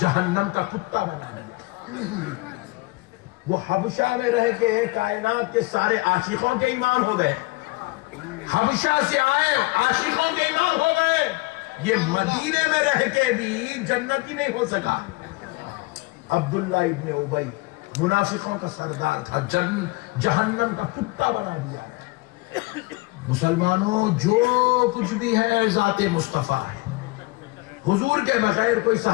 کا کتا بنا دیا۔ وہ حبشہ میں رہ کے کائنات کے سارے عاشقوں کے ایمان ہو گئے، حبشہ سے آئے عاشقوں کے ایمان ہو گئے، یہ مدینے میں رہ کے بھی جنتی نہیں ہو سکا۔ عبداللہ ابن ابی منافقوں کا سردار تھا، جہنم کا کتا بنا دیا۔ مسلمانوں، جو کچھ بھی ہے ذات مصطفیٰ ہے۔ حضور کے بغیر کوئی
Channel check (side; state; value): right; quieter; 23.7 dB